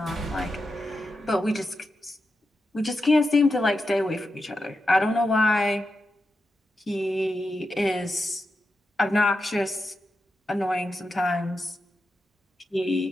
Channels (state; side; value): normal; both; correlation 0.89